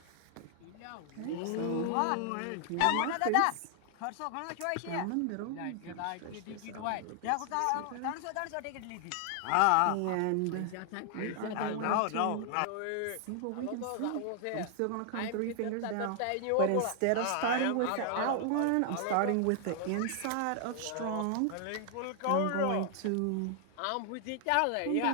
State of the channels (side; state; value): both; different; correlation 0.00